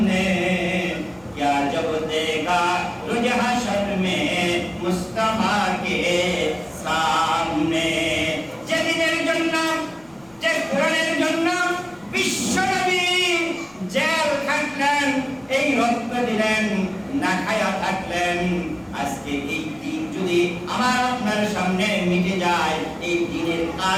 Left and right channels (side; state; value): left; noise; rumble, 30 dB below the sound